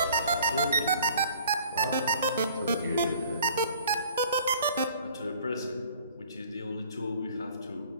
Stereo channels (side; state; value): both; inverted; correlation -0.53